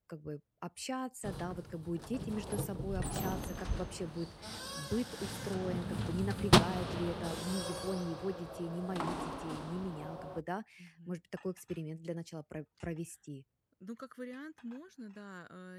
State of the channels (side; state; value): both; identical; correlation 1.00